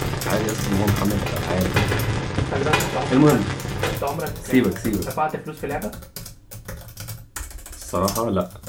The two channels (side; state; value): both; identical; correlation 1.00